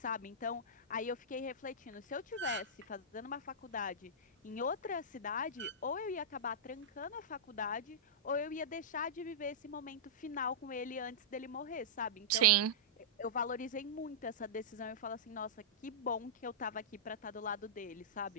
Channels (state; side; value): normal; both; correlation -0.14